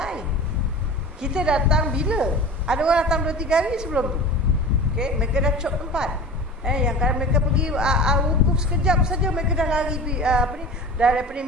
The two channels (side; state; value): both; normal; correlation 0.35